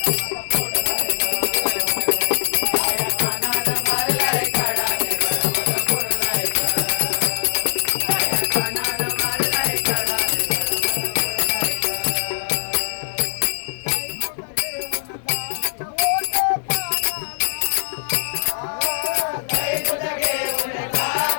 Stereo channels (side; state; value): right; silent; digital silence